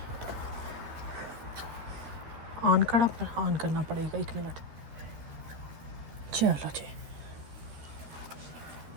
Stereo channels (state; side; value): late; left; 13 ms